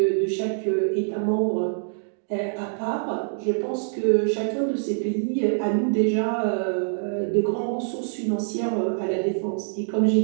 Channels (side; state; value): left; silent; digital silence